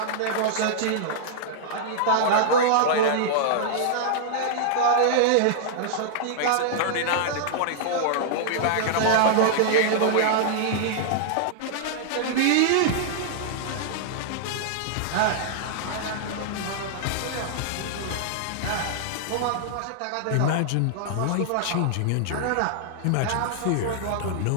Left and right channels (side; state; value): both; different; correlation -0.01